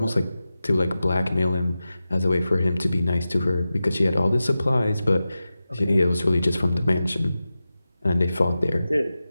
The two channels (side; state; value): both; inverted; correlation -0.94